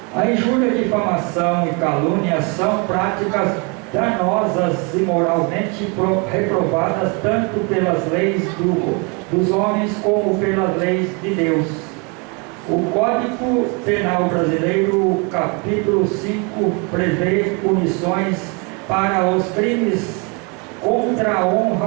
A injúria, difamação e calúnia são práticas danosas e moralmente reprovadas tanto pelas leis dos homens como pelas leis de Deus. O Código Penal Brasileiro, capítulo 5, prevê punições para os crimes contra a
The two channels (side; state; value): left; quieter; 32.1 dB